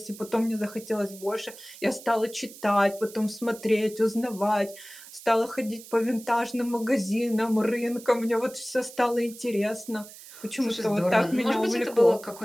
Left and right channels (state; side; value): noise; right; hiss, 17 dB below the sound